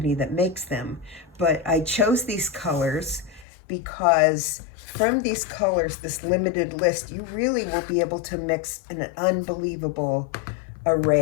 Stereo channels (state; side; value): drops out; right; at 3.5 s